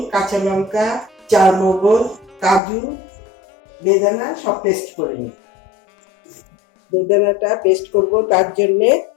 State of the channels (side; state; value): right; drops out; at 2.6 s